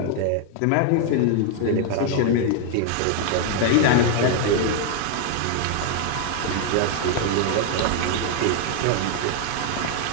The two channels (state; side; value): different; both; correlation 0.00